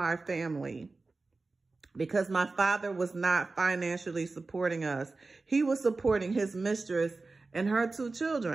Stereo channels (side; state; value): left; quieter; 3.7 dB